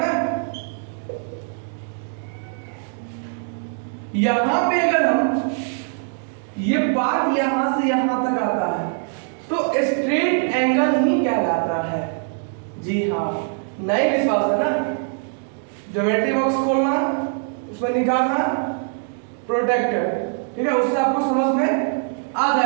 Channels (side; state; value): left; silent; 61 dB below the other